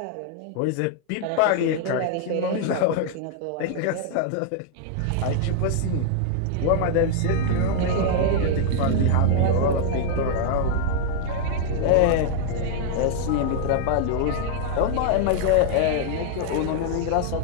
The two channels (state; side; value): different; both; correlation -0.01